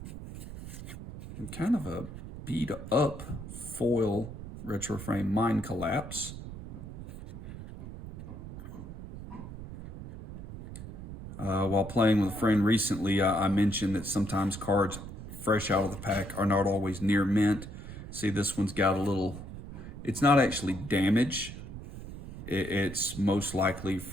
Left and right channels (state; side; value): noise; right; rumble, 11 dB below the sound